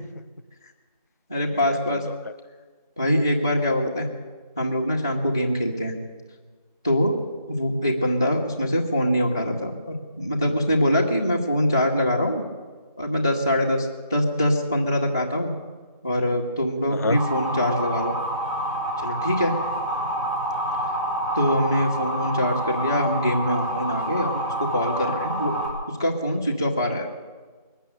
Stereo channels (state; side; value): inverted; both; correlation -0.65